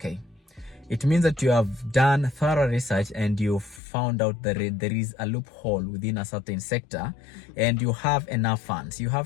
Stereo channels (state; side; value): drops out; right; at 3.8 s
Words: It means that you have done thorough research and you found out that there is a loophole within a certain sector, and you have enough funds. You